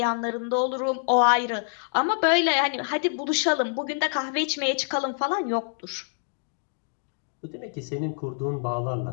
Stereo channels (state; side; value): silent; right; digital silence